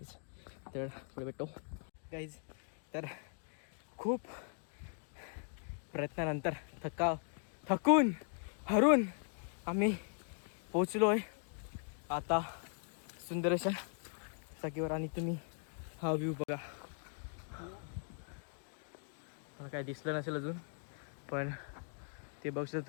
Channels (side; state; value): right; silent; 51 dB below the other